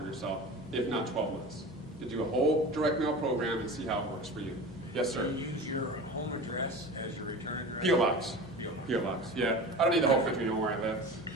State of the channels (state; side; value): noise; left; hum, 21 dB below the sound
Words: yourself, if not 12 months. To do a whole direct mail program and see how it works for you. Yes, sir? Do you use your home address as your return address? P.O. Box. P.O. P.O. Box, yeah. I don't need the whole country to know where I live.